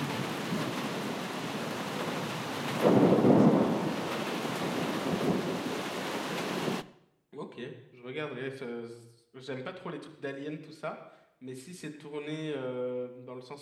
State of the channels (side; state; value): both; identical; correlation 1.00